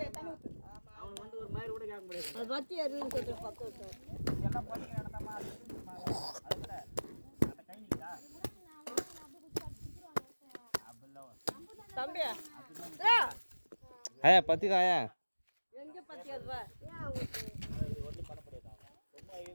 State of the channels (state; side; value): inverted; both; correlation -1.00